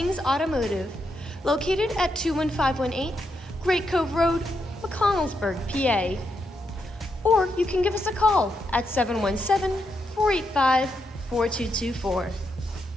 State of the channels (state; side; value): normal; both; correlation 0.82